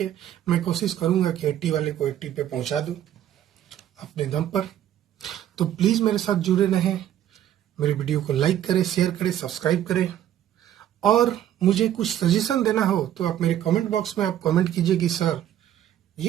मैं कोशिश करूंगा कि 80 वाले को 80 पे पहुंचा दूं अपने दम पर। तो प्लीज मेरे साथ जुड़े रहें, मेरे वीडियो को लाइक करें, शेयर करें, सब्सक्राइब करें, और मुझे कुछ सजेशन देना हो तो आप मेरे कमेंट बॉक्स में आप कमेंट कीजिए कि सर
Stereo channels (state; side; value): quieter; left; 11.3 dB